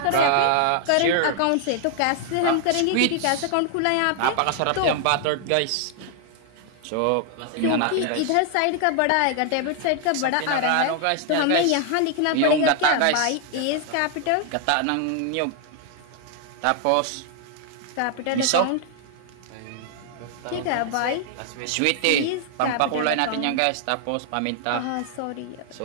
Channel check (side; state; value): both; different; correlation 0.00